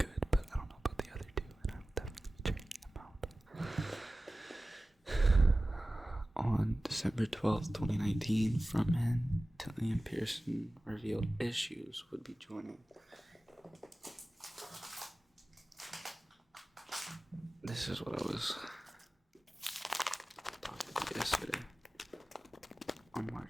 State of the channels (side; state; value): both; normal; correlation 0.96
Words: but I don't know about the other two, and I will definitely be checking them out. On December 12th, 2019, frontman Dillian Pearson revealed Issues would be joining. This is what I was talking about yesterday. On